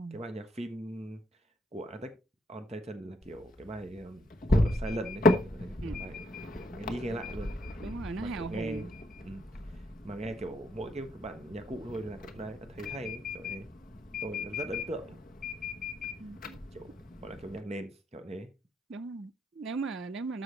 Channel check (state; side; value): normal; both; correlation 0.73